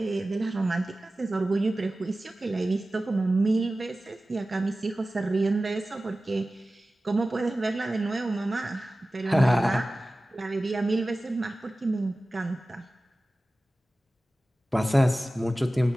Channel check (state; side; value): normal; both; correlation 0.96